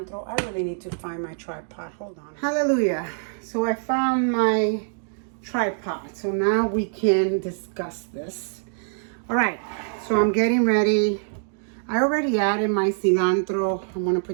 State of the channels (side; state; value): left; silent; digital silence